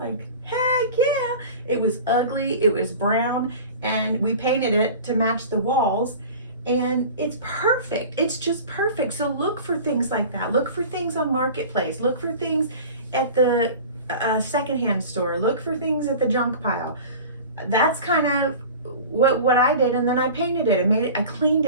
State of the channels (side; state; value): both; inverted; correlation -0.38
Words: like, heck yeah. It was ugly, it was brown, and we painted it to match the walls, and it's perfect. It's just perfect. So look for things like that. Look for things on Marketplace. Look for things at the secondhand store. Look for things at the junk pile. That's kind of what I did, and then I painted it. I cleaned